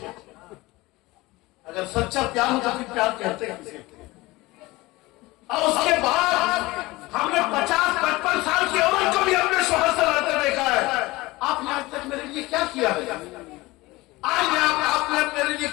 अगर सच्चा प्यार हो तो फिर प्यार कहते हैं किसे? और उसके बाद हमने 50-55 साल की औरत को भी अपने शोहर से लड़ते देखा है। आपने आज तक मेरे लिए क्या किया है? आज आपने मेरे लिए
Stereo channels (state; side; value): quieter; right; 20.6 dB